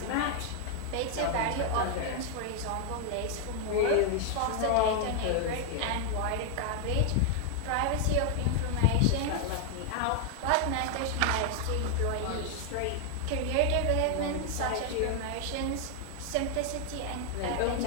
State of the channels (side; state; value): both; different; correlation 0.00